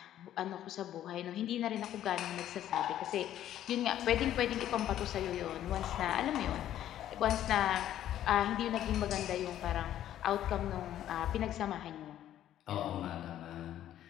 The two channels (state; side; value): quieter; right; 11.8 dB